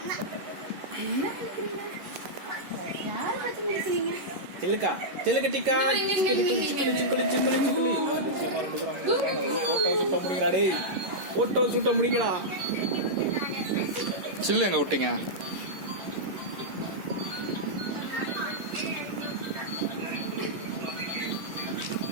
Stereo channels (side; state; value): left; late; 11 ms